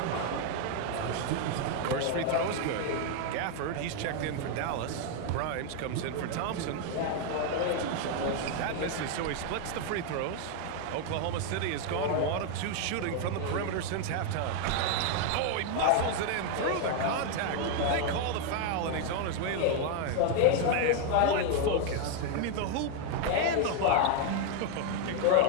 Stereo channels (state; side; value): different; both; correlation 0.00